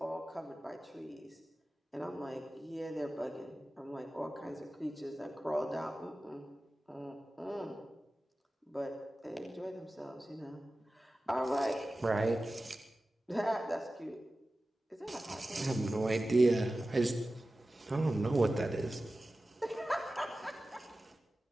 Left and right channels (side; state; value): both; normal; correlation 0.95